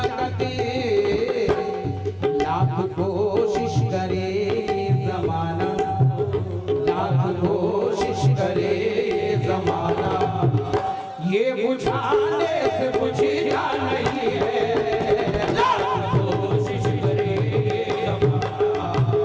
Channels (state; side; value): identical; both; correlation 1.00